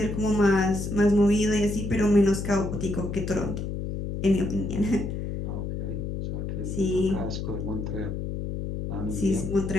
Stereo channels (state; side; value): noise; left; hum, 4 dB below the sound